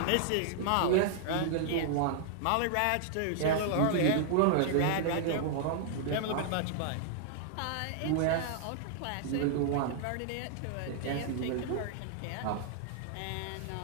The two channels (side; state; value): both; different; correlation -0.01